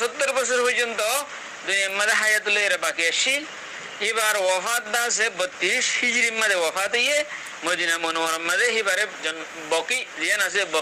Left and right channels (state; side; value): identical; both; correlation 1.00